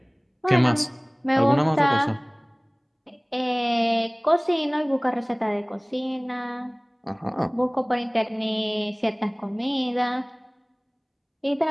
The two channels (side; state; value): both; identical; correlation 1.00